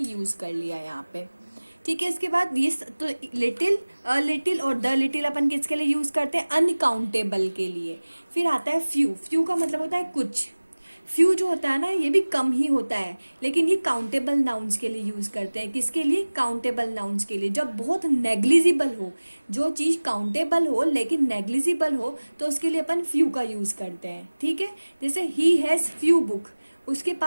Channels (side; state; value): both; inverted; correlation -1.00